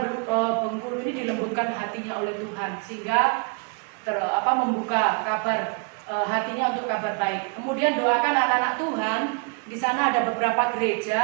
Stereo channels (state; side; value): quieter; left; 34.7 dB